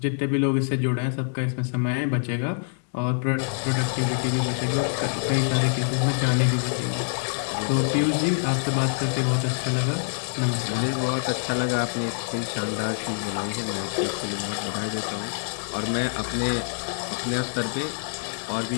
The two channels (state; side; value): silent; right; digital silence